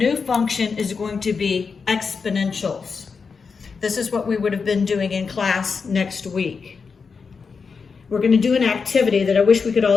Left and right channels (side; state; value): right; quieter; 5.3 dB